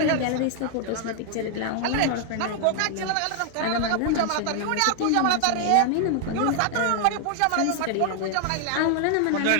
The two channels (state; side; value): different; both; correlation 0.00